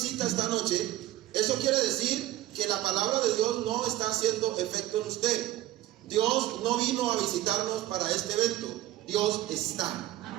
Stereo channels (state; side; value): quieter; left; 14.7 dB